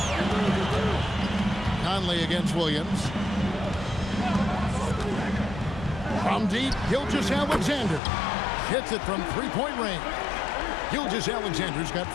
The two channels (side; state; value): right; drops out; at 8.0 s